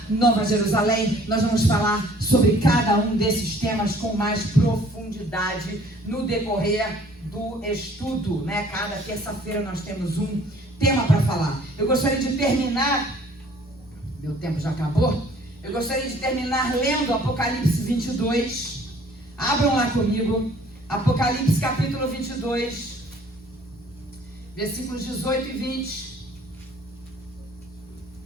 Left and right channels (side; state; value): both; normal; correlation 0.56